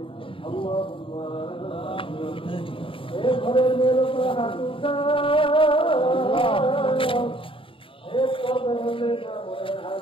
ঘরের মেয়ের উপর হাত উঠা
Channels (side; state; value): right; late; 0.25 ms